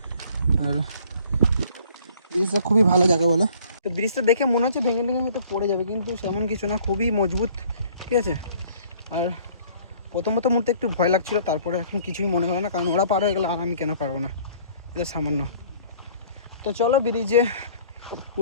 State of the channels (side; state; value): both; inverted; correlation -0.55